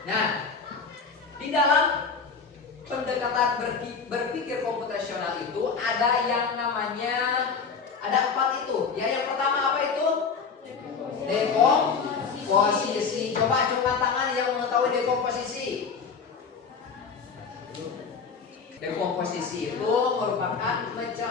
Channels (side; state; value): right; quieter; 5.5 dB